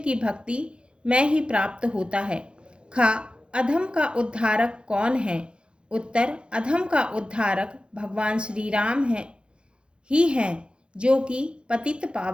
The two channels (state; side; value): late; left; 0.055 ms